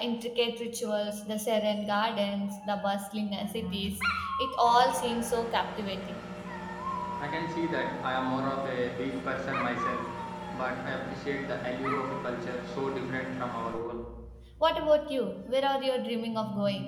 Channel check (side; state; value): both; identical; correlation 1.00